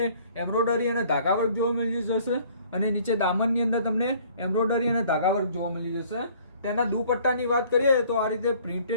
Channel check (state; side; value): inverted; both; correlation -0.56